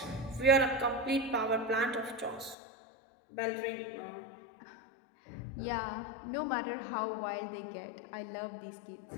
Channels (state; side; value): drops out; right; at 2.6 s